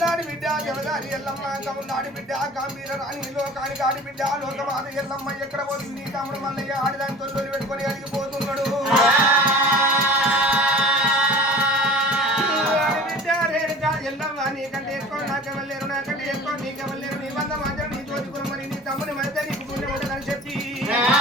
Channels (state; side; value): normal; both; correlation 0.42